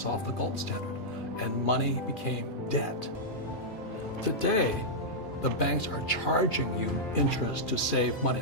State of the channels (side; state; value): both; normal; correlation -0.09